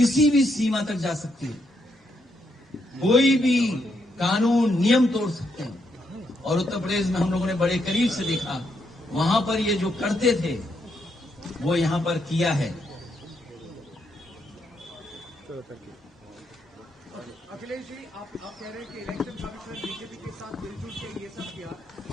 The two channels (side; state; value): both; normal; correlation 0.78